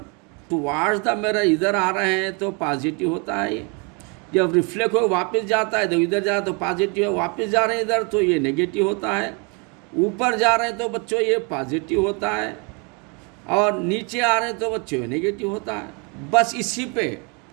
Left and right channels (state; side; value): quieter; left; 33.1 dB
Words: टुवार्ड्स द मिरर इधर आ रहे हैं तो पॉजिटिव होता है ये। जब रिफ्लेक्ट हो वापस जाता है तो इधर जा तो पॉजिटिव है, वापस जा रहे हैं इधर तो ये नेगेटिव होता है। ऊपर जा रहे हैं तो बच्चों ये पॉजिटिव होता है, और नीचे आ रहे हैं तो बच्चों ये नेगेटिव होता है। बस इसी पे